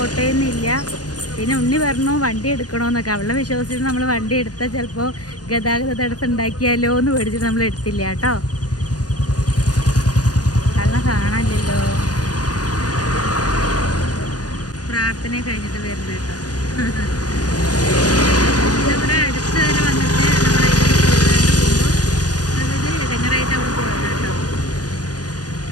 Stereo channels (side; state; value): right; late; 0.68 ms